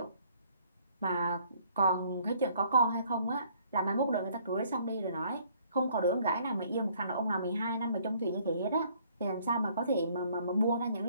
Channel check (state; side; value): inverted; both; correlation -0.62